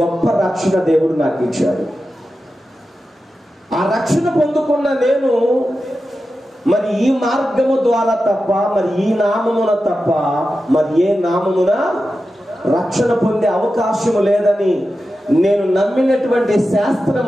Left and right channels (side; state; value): both; normal; correlation 0.92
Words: రక్షణ దేవుడు నాకు ఇచ్చాడు. ఆ రక్షణ పొందుకున్న నేను మరి ఈ మార్గము ద్వారా తప్ప, మరి ఈ నామమున తప్ప మరి ఏ నామమున రక్షణ పొందే అవకాశము లేదని నేను నమ్మినటువంటి